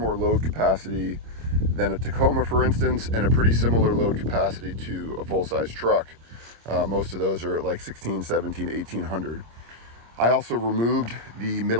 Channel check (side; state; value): left; late; 26 ms